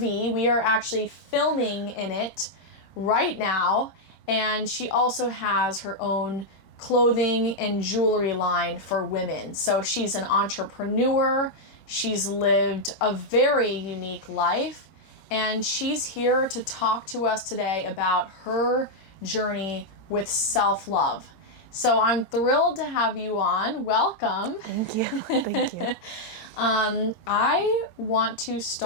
We are actually filming in it right now. And she also has her own clothing and jewelry line for women. So she's an entrepreneur. She's lived a very unique life, and she's here to talk to us today about her journey with self-love. So I'm thrilled to have you on. Welcome. Thank you. Thank you. I want to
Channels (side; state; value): right; late; 22 ms